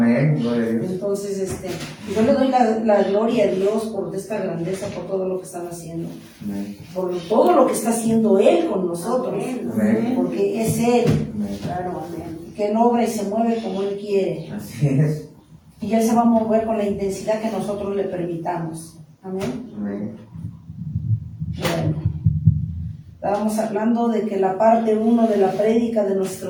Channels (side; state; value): both; identical; correlation 1.00